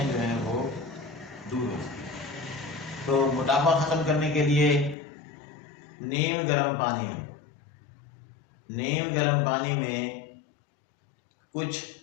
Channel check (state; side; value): drops out; right; at 5.0 s